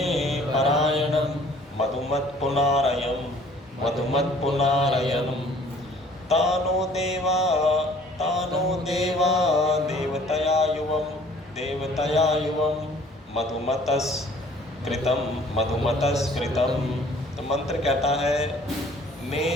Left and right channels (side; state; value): both; normal; correlation 0.54